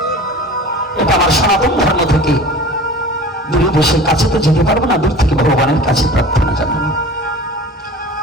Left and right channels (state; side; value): normal; both; correlation 0.40